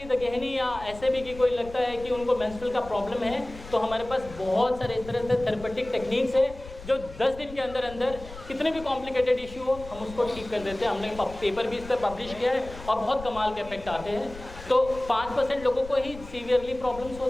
द गहनी या ऐसे भी कि कोई लगता है कि उनको मेंस्ट्रुअल का प्रॉब्लम है, तो हमारे पास बहुत सारे इस तरह से थेरेपेटिक टेक्निक्स है जो 10 दिन के अंदर अंदर कितने भी कॉम्प्लिकेटेड इशू हो हम उसको ठीक कर देते हैं। हमने पेपर भी इस पर पब्लिश किया है और बहुत कमाल के इफेक्ट आते हैं। तो 5% लोगों को ही सीवियरली प्रॉब्लम्स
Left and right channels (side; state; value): left; noise; rumble, 15 dB below the sound